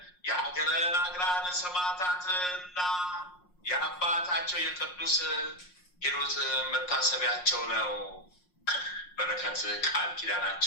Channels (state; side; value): late; right; 5.6 ms